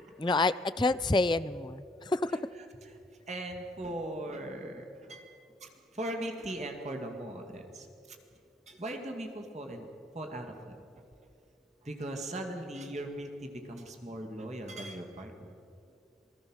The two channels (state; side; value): normal; both; correlation 0.65